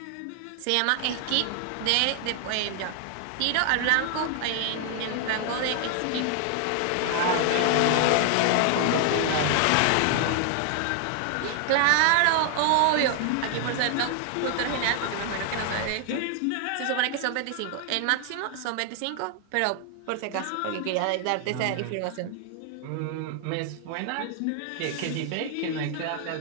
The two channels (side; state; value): both; different; correlation 0.00